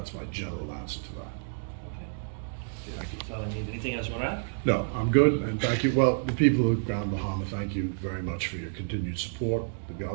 my general answer to that. Thank you. That's all I need. Anything else you want to add? No, I'm good, and thank you. Well, the people of Grand Bahama, thank you very much for your continued support, the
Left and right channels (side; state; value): left; silent; digital silence